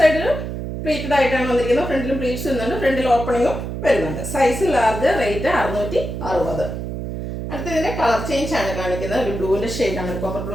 പ്ലീറ്റഡ് ആയിട്ടാണ് വന്നിരിക്കുന്നത്. ഫ്രണ്ടിലും പ്ലീറ്റ്സ് വരുന്നുണ്ട്, ഫ്രണ്ടിൽ ഓപ്പണിങ്ങും വരുന്നുണ്ട്. Size large, rate 660. അടുത്തതിൻ്റെ കളർ ചേഞ്ച് ആണ് കാണിക്കുന്നത്. ഒരു ബ്ലൂവിൻ്റെ ഷെയ്ഡാണ്, കോപ്പർ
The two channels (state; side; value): noise; right; hum, 5 dB below the sound